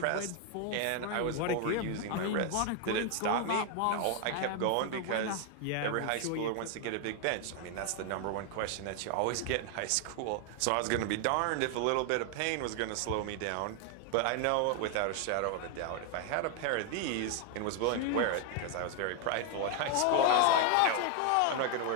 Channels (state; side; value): different; both; correlation 0.00